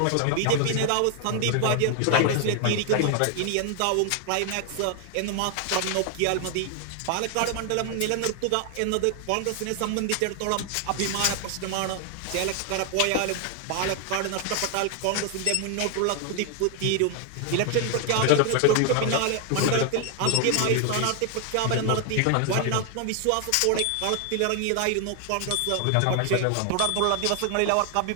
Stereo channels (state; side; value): different; both; correlation 0.00